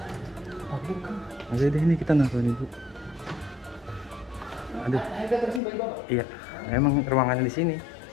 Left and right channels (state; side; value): drops out; right; at 5.6 s